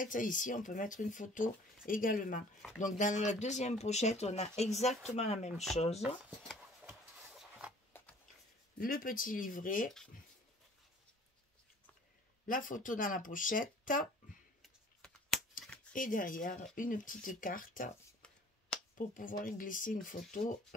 ici, on peut mettre une photo également. Donc, dans la deuxième pochette, on a exactement la même chose. Le petit livret. La photo dans la pochette. Et derrière, une petite carte pour pouvoir y glisser une photo,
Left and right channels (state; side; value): normal; both; correlation 0.51